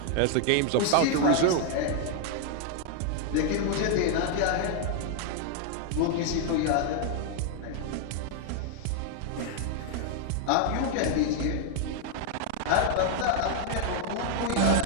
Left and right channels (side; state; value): both; different; correlation 0.00